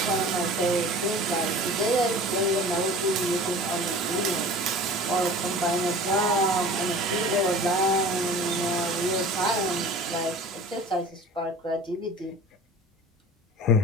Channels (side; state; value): both; normal; correlation 0.41